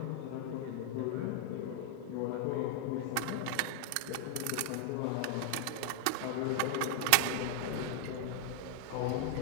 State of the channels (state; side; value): different; both; correlation 0.00